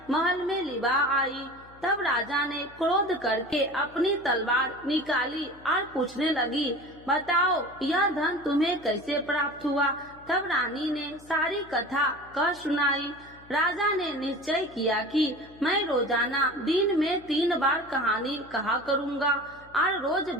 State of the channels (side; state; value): left; noise; hum, 24 dB below the sound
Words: महल में लिवा आई। तब राजा ने क्रोध करके अपनी तलवार निकाली और पूछने लगी, बताओ यह धन तुम्हें कैसे प्राप्त हुआ। तब रानी ने सारी कथा कह सुनाई। राजा ने निश्चय किया कि मैं रोजाना दिन में 3 बार कहानी कहा करूँगा और रोज